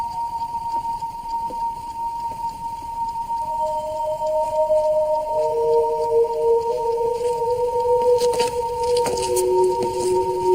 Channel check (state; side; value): identical; both; correlation 1.00